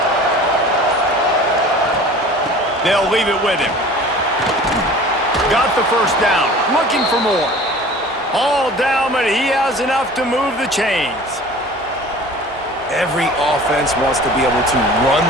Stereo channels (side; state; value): both; normal; correlation 0.43